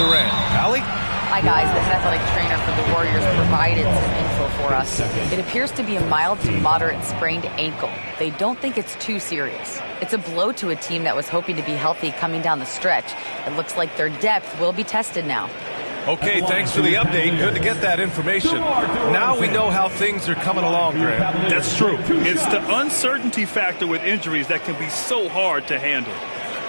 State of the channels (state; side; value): inverted; both; correlation -1.00